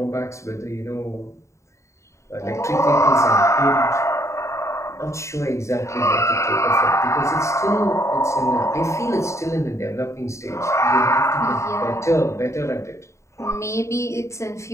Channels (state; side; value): late; right; 0.14 ms